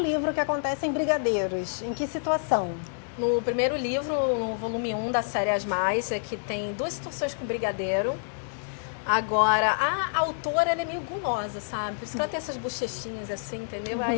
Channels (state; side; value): silent; right; digital silence